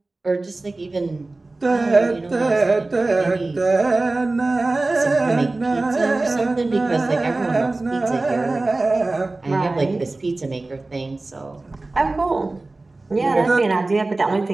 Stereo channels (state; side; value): quieter; left; 3.1 dB